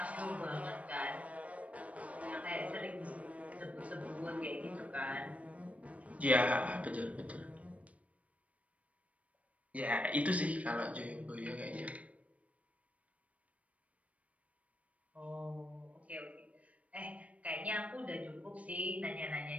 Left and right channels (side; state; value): left; late; 0.066 ms